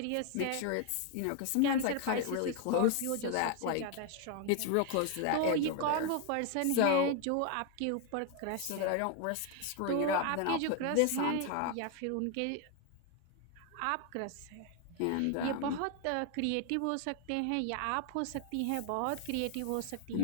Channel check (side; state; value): both; different; correlation 0.01